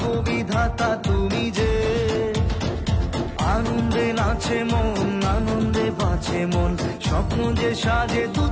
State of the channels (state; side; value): identical; both; correlation 1.00